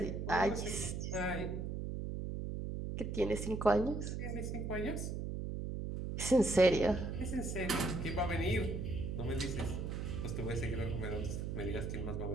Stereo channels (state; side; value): noise; right; hum, 3 dB below the sound